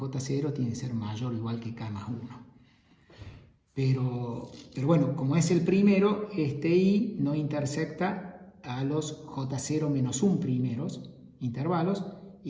tiene que ser mayor o igual que K más 1. Pero bueno, como es el primero, este I no intersecta a los J0 menos 1 primeros intervalos,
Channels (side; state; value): both; identical; correlation 1.00